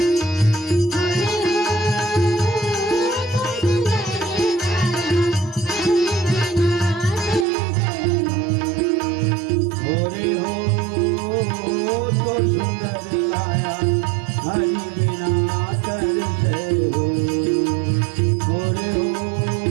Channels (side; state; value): left; drops out; at 7.5 s